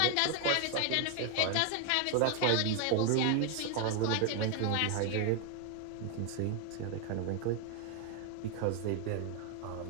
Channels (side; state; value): both; different; correlation 0.01